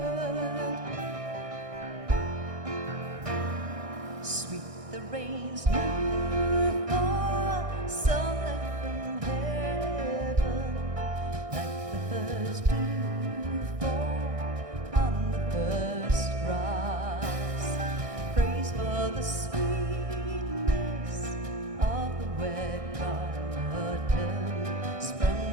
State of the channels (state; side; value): late; left; 1.6 ms